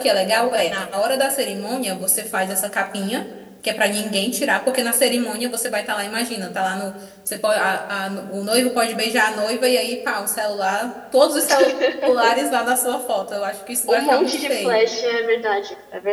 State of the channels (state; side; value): identical; both; correlation 1.00